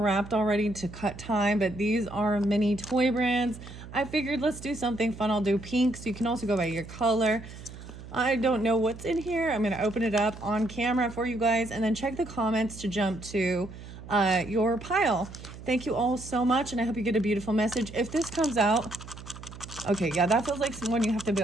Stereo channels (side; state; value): right; noise; hum, 14 dB below the sound